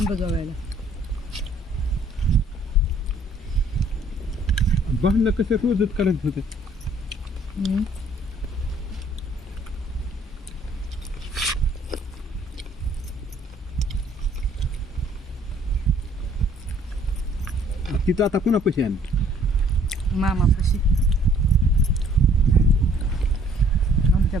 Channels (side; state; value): both; normal; correlation 0.59